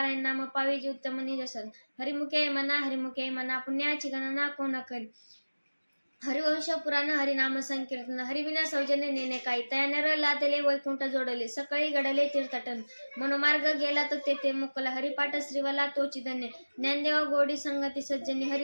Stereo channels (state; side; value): inverted; both; correlation -1.00